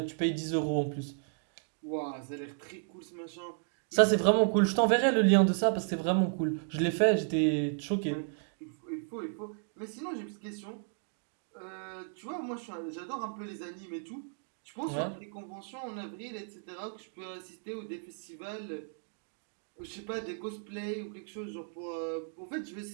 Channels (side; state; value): left; silent; digital silence